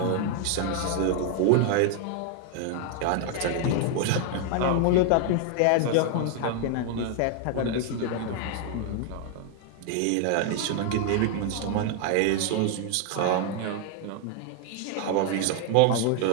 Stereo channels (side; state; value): both; different; correlation 0.00